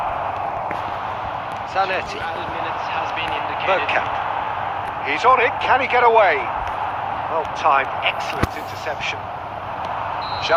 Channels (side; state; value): both; identical; correlation 1.00